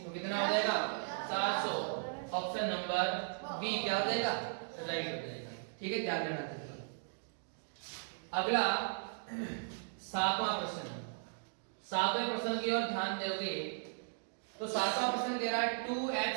कितना हो जाएगा 400। ऑप्शन नंबर बी क्या हो जाएगा, राइट हो जाएगा। ठीक है, ध्यान देना। अगला 7वां प्रश्न, 7वें प्रश्न की ओर ध्यान दोगे तो 7वां प्रश्न कह रहा है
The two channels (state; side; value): silent; left; digital silence